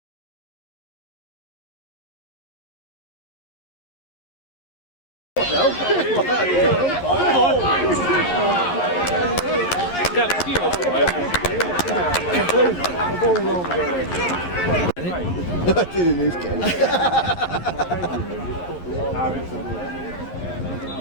I did in this game.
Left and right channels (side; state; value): right; late; 11 ms